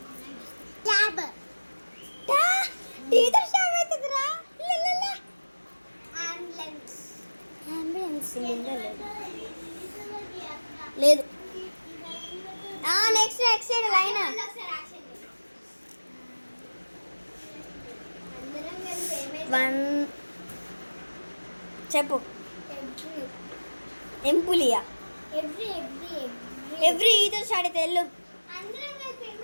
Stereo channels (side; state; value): both; inverted; correlation -1.00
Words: ట్యాబ్ టీతో స్టార్ట్ అవుతుందిరా. అంబులెన్స్ అంబులెన్స్ లేదు. Next side line. అందరం కలిసి 1 చెప్పు. ఎంపులియా ఎవ్రీ ఈతో స్టార్ట్ అయితే వెళ్ళు. అందరం కలిసి